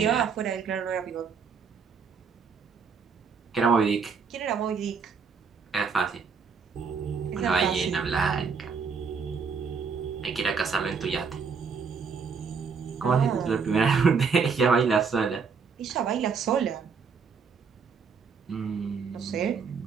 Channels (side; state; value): left; quieter; 5.7 dB